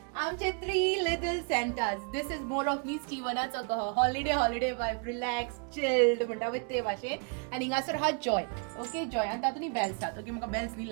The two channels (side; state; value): left; quieter; 38.9 dB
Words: आमचे 3 little Santas. This is more of me स्टीवनाचो कहो हॉलिडे वायब, रिलॅक्स चिल्ड म्हणटा पळय ते भाशेन. आनी हिंगासर हा जॉय. ओके, जॉय आनी तातूंत बेल्स आसात. ओके, म्हाका बेल्स न्ही